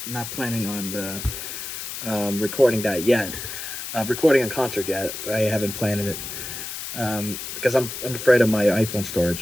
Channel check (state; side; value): noise; left; hiss, 7 dB below the sound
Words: not planning on recording that yet. Recording a concert yet, but I haven't planned it because I'm afraid of my iPhone